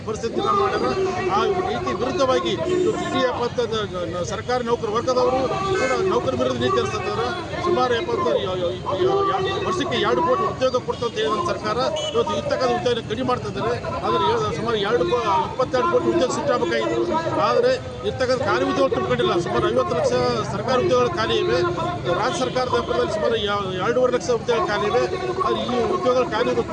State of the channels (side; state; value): both; identical; correlation 1.00